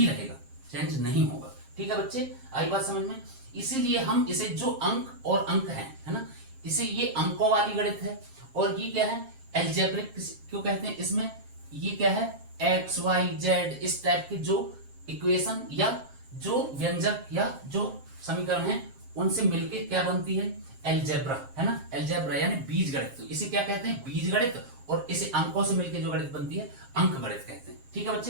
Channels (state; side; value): late; left; 7.5 ms